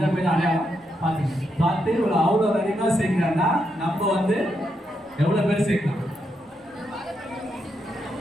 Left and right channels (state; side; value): normal; both; correlation 0.81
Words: பையன் அடையாளம் பார்த்து ஒரு அவ்வளோ அதிகமாக சேர்க்கிறாங்கன்னா நம்ம எவ்வளோ பேர் சேர்க்கலாம்?